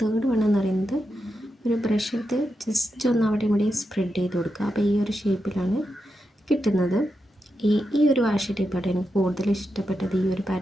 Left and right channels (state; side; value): normal; both; correlation 0.87